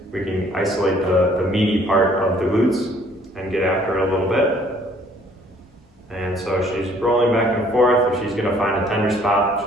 we can isolate the meaty part of the glutes and get after it a little bit. And so she's rolling back and forth. If she's going to find a tender spot,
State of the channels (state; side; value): normal; both; correlation 0.60